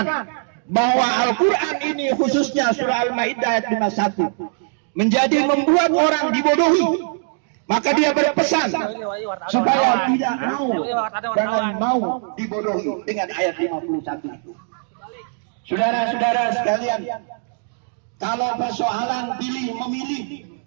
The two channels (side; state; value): left; silent; 62 dB below the other